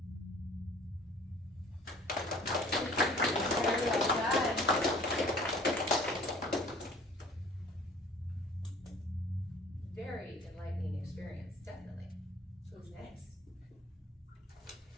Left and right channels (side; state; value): both; normal; correlation 0.51